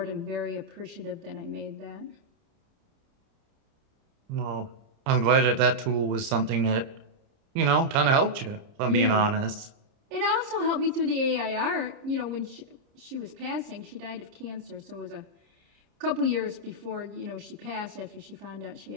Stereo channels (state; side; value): late; left; 30 ms